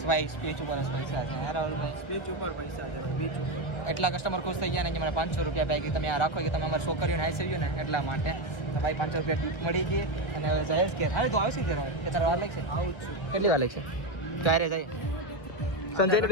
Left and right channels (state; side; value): late; right; 1.5 ms